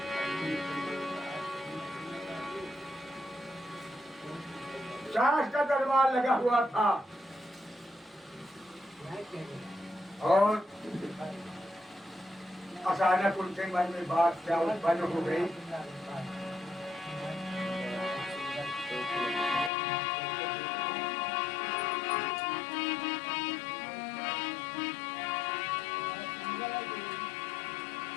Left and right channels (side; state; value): right; drops out; at 19.7 s